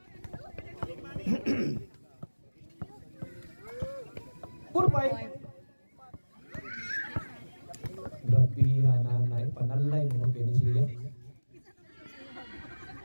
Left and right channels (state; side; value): inverted; both; correlation -1.00